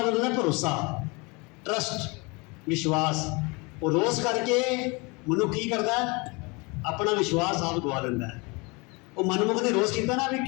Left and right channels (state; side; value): quieter; right; 27.9 dB